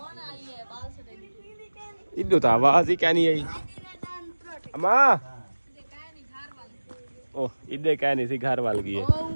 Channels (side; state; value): both; inverted; correlation -1.00